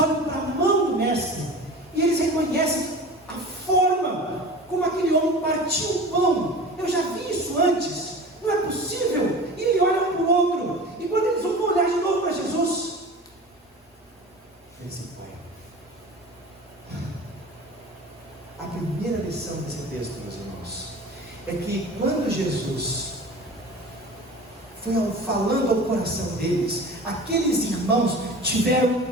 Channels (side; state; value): both; normal; correlation 0.36